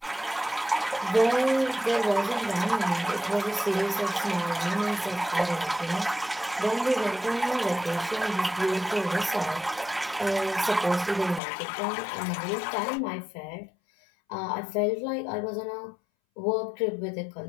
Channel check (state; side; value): drops out; right; at 11.4 s